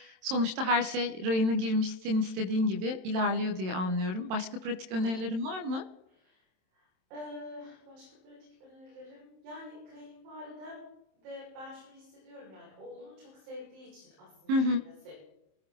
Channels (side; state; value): left; late; 27 ms